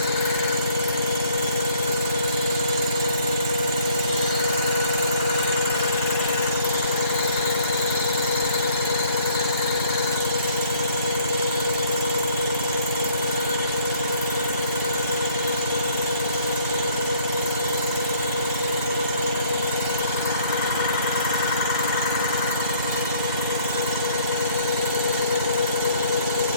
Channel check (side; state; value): both; inverted; correlation -0.60